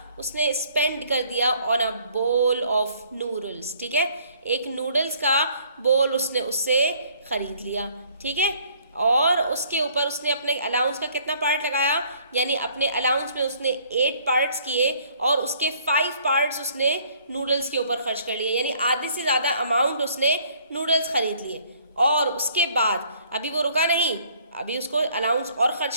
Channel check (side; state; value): both; inverted; correlation -0.60